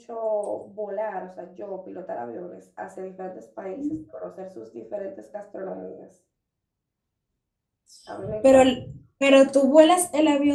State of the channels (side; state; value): both; identical; correlation 1.00